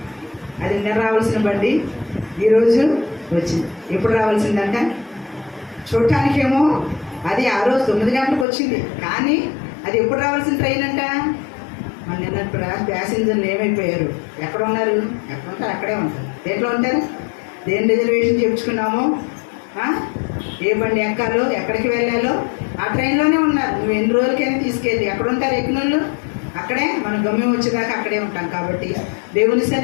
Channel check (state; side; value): drops out; right; at 8.5 s